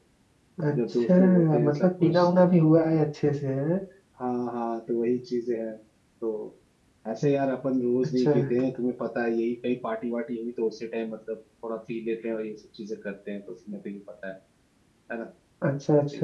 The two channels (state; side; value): identical; both; correlation 1.00